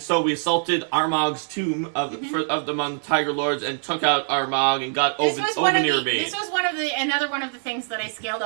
so we assaulted Armag's tomb of among the Tiger Lords and took out Armag and got Ovenir Bane. This was another one of the things that I scaled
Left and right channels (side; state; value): left; silent; 58 dB below the other